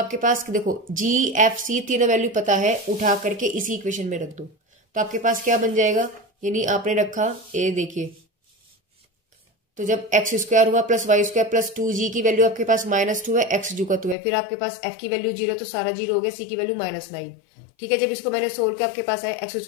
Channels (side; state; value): right; drops out; at 14.2 s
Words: पास देखो g f c तीनों वैल्यू पता है, उठा करके इसी इक्वेशन में रख दो। तो आपके पास क्या बन जाएगा, यानी आपने रखा, ये देखिए तो जब एक्स स्क्वायर हुआ plus Y square plus 2g की वैल्यू आपके पास -2 है, एक्स जू का 2 है, फिर आपके पास f की वैल्यू 0 तो सारा 0 हो गया, c की वैल्यू -9। ठीक है, जब इसको मैंने सोल्व किया आपके पास आया x